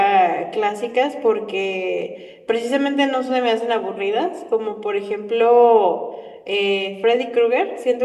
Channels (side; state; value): both; identical; correlation 1.00